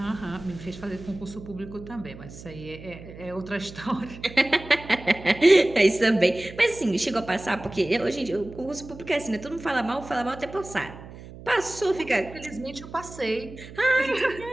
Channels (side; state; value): right; noise; hum, 15 dB below the sound